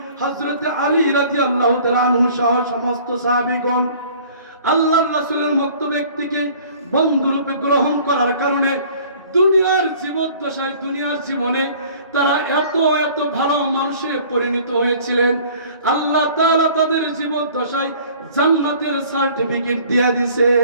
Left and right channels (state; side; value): inverted; both; correlation -0.51